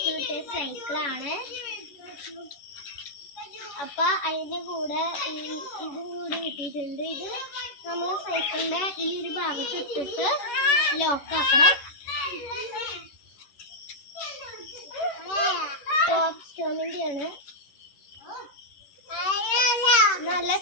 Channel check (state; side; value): late; right; 11 ms